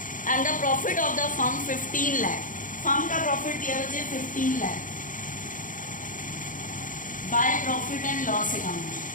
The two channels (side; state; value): right; late; 0.38 ms